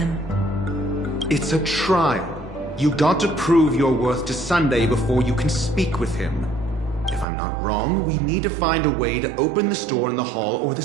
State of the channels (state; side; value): drops out; left; at 7.2 s